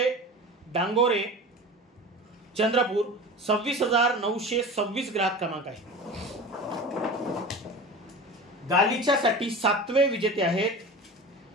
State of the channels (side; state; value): both; normal; correlation 0.33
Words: डांगोरे, चंद्रपूर. 26,926 ग्राहक क्रमांक आहे. गालिच्यासाठी सातवे विजेते आहेत